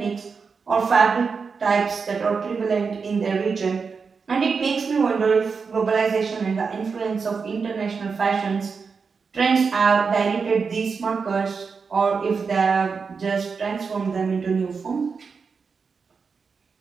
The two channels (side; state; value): left; quieter; 5.3 dB